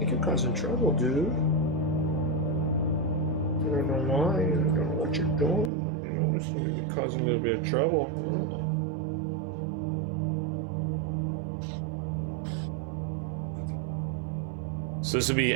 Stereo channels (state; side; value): drops out; left; at 5.7 s